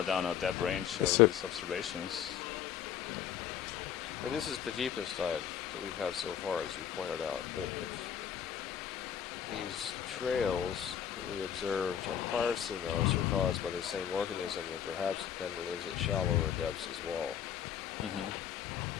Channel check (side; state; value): right; quieter; 9.2 dB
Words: down a depth range of these observations. And this is the deepest dive that we've had so far, as you pointed out. But if these trails that we observed on prior seamounts are caused by the same organism, then perhaps it then lives at shallower depths as well.